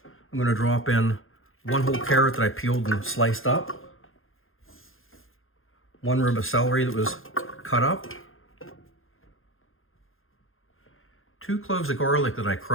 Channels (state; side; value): late; right; 0.60 ms